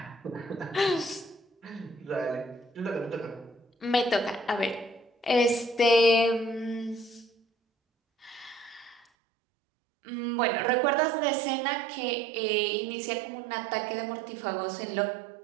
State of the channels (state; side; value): drops out; left; at 9.1 s